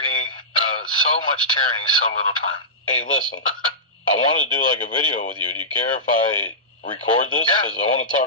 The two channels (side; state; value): both; normal; correlation -0.17